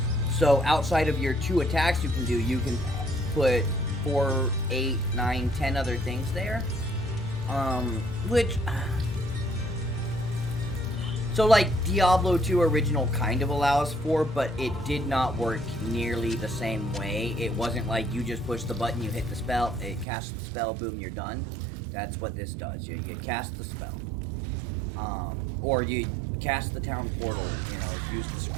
So outside of your 2 attacks you can put 4, 8, 9, 10 other things there. Which... So, like, Diablo 2 original kind of allows for, but it did not work nearly the same way. It wasn't like you just push the button, you hit the spell, it casts the spell, boom, you're done. That's what this does. You cast the spell. Or you cast the town portal, you know, use the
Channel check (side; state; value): left; drops out; at 20.1 s